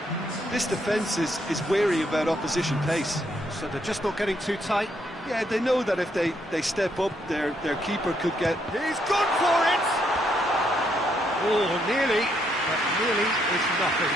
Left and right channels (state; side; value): normal; both; correlation 0.74